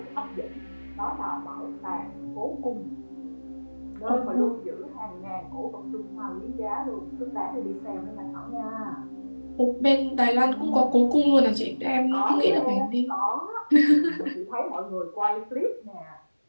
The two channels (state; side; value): inverted; both; correlation -1.00